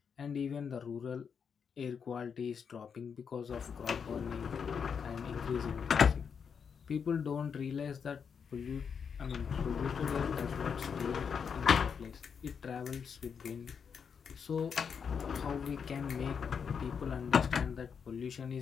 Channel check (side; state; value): right; quieter; 6.6 dB